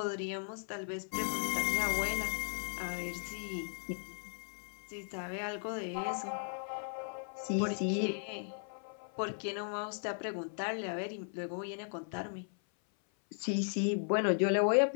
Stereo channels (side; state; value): right; silent; 53 dB below the other